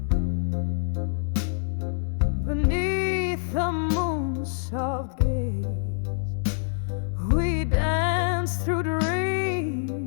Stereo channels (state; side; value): silent; right; digital silence